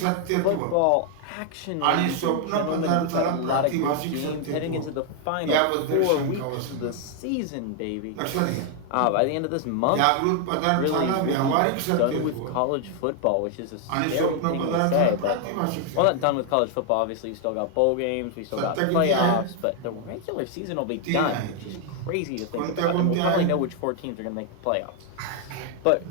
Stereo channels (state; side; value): different; both; correlation 0.00